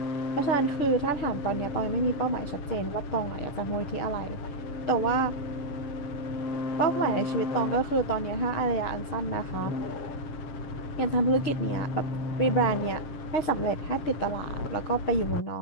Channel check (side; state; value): right; late; 6.8 ms